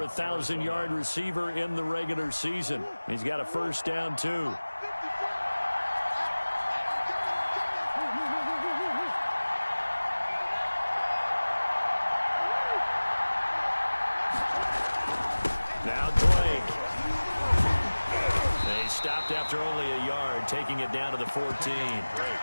a 1,000-yard receiver in the regular season. He's got a first down, too. Now Drake. They stopped after only a yard, taking it down to the 14.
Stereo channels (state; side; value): inverted; both; correlation -1.00